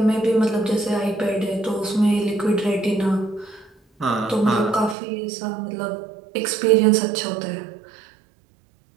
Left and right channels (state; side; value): drops out; left; at 5.0 s